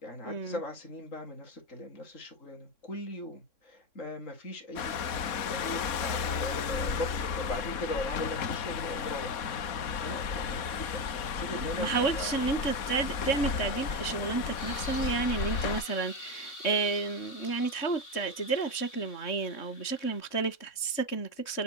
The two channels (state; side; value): late; right; 3.6 ms